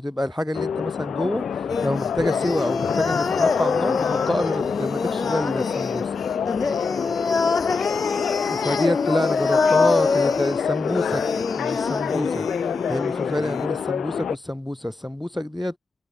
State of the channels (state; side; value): quieter; right; 3.8 dB